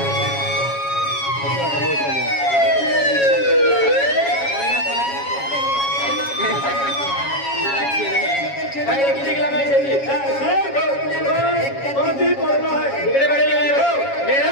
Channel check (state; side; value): late; right; 7.3 ms